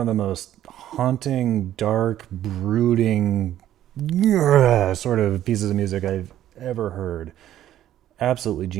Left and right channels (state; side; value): quieter; left; 11.9 dB